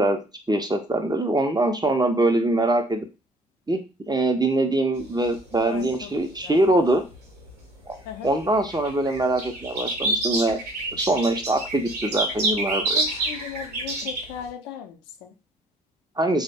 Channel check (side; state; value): both; normal; correlation 0.57